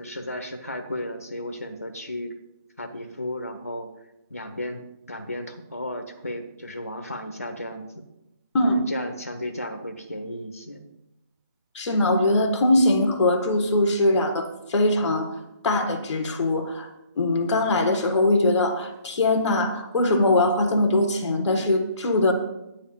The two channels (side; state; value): both; inverted; correlation -0.62